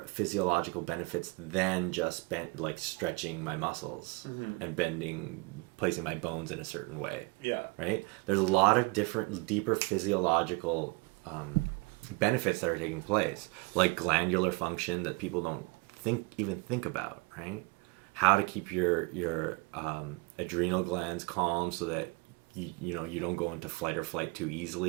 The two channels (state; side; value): quieter; left; 27.8 dB